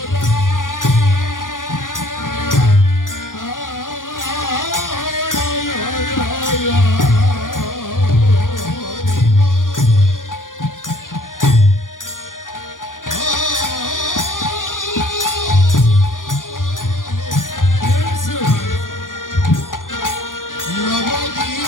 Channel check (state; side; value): late; right; 0.89 ms